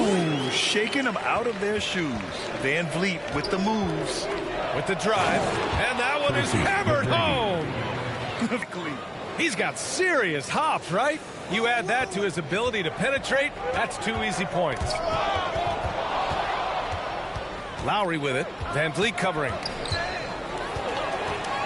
shaking them out of their shoes. Van Vliet with the moves. With the drive. And that one is hammered home. He's got serious hops, right? You add that to his ability to penetrate, that's 2 easy points. Lowry with it. Van Vliet covering.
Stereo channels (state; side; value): identical; both; correlation 1.00